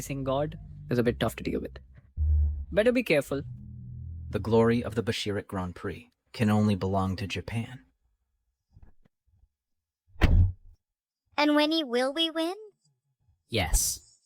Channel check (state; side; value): identical; both; correlation 1.00